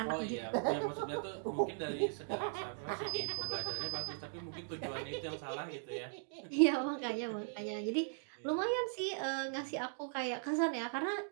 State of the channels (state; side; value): silent; left; digital silence